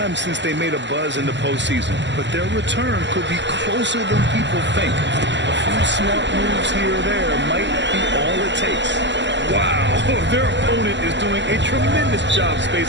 since they made a buzz in the postseason, but their return could be closer than people think. A few smart moves here or there might be all it takes. Wow, their opponent is doing a tremendous job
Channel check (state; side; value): late; left; 0.52 ms